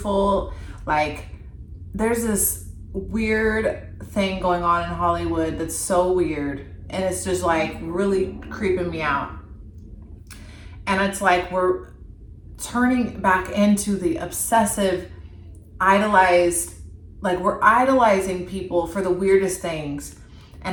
Like, there's this weird thing going on in Hollywood that's so weird. And it's just like really creeping me out. And it's like we're turning back into the obsessive, idolized, like we're idolizing people for the weirdest things.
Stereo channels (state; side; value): identical; both; correlation 1.00